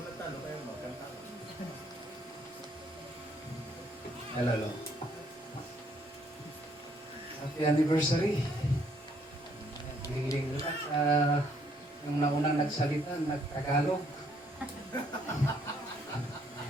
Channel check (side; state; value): both; normal; correlation 0.68